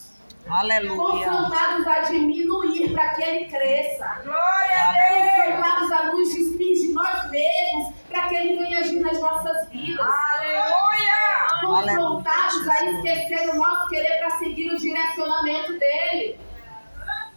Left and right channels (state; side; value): inverted; both; correlation -1.00